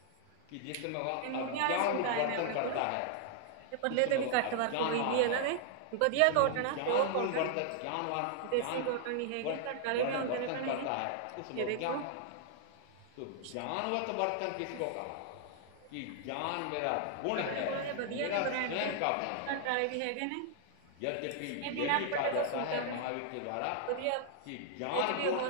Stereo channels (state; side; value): different; both; correlation -0.01